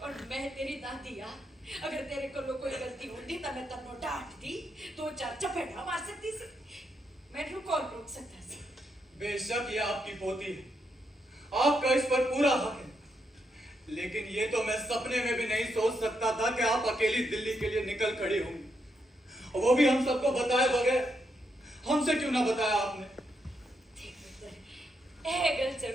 मैं तेरी दादी आ, अगर तेरे को कोई गलती होती तो मैं तन्नो डांट दी, दो चार चपेटा मार सकती सी। मैं तू कौन रोक सकता सी? बेशक ये आपकी पोती है, आपका इस पर पूरा हक है। लेकिन ये तो मैं सपने में भी नहीं सोच सकता था कि आप अकेली दिल्ली के लिए निकल खड़ी होंगी, और वो भी हम सबको बताए बगैर। हमसे क्यों ना बताया आपने? देख पुत्र, ਇਹ ਗੱਲ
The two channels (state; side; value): normal; both; correlation 0.80